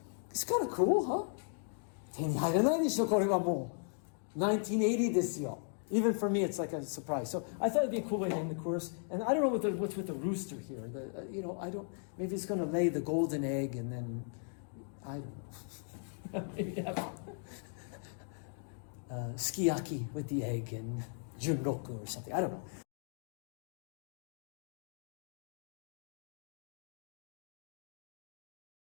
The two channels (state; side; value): silent; right; 53 dB below the other